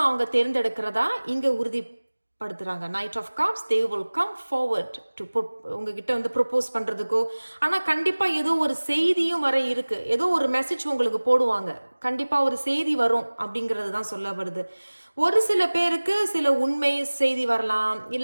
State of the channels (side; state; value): both; inverted; correlation -1.00